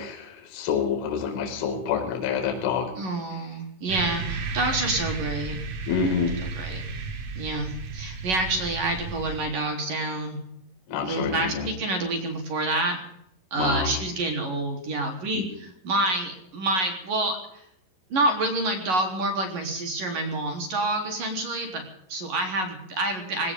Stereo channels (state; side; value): late; left; 11 ms